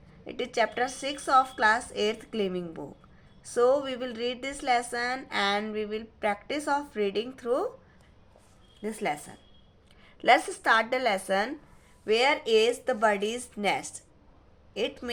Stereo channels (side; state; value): both; identical; correlation 1.00